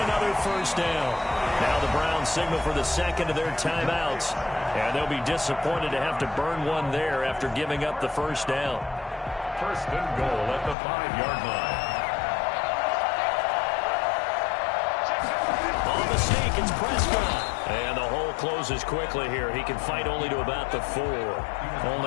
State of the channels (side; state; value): right; drops out; at 10.8 s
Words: another first down. Now the Browns signal for the 2nd of their timeouts. And they'll be disappointed to have to burn one there after giving up the first down. 1st and goal at the 5-yard line. On the sneak, it's Prescott. And the hole closes quickly here. He can fight only to about the 4.